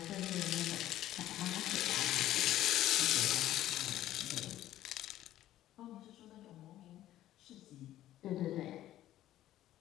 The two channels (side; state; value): right; quieter; 13.5 dB